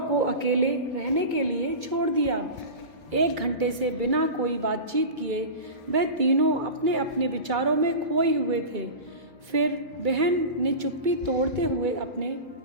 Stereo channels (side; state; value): left; late; 1.8 ms